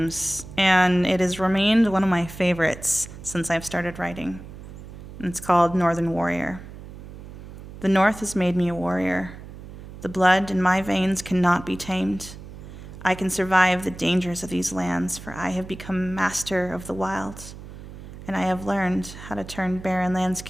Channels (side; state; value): right; noise; hum, 14 dB below the sound